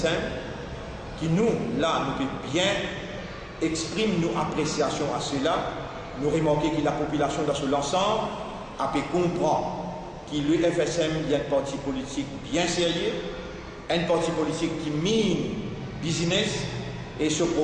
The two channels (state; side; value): identical; both; correlation 1.00